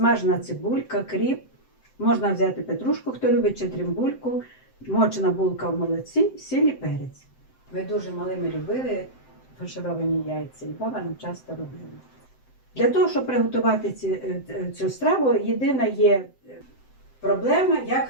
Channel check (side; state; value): right; late; 7.8 ms